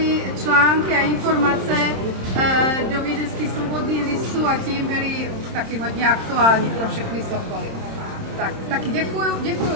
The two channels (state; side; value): late; left; 26 ms